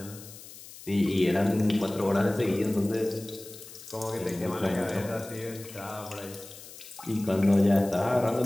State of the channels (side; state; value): left; noise; hiss, 17 dB below the sound